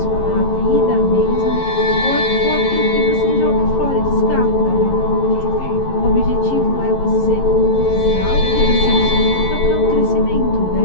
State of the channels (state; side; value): late; right; 11 ms